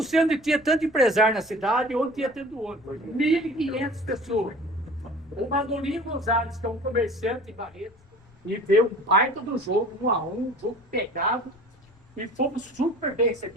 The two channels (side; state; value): left; noise; rumble, 29 dB below the sound